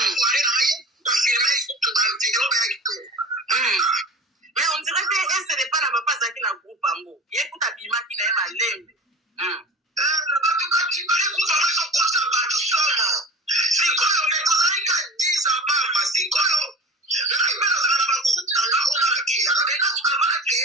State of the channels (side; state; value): both; normal; correlation 0.36